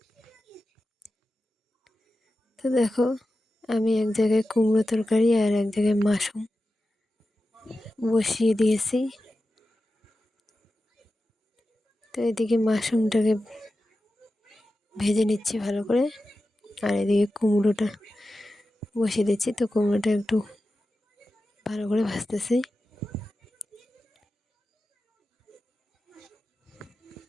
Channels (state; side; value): normal; both; correlation 0.93